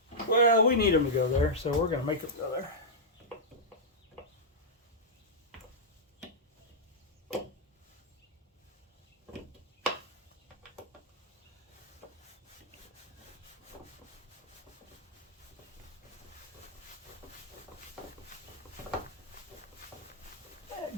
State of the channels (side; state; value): both; normal; correlation -0.09